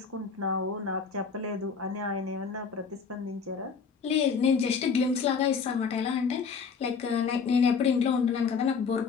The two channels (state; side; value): quieter; right; 5.7 dB